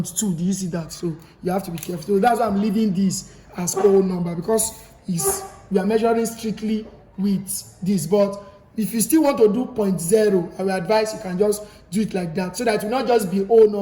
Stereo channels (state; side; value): identical; both; correlation 1.00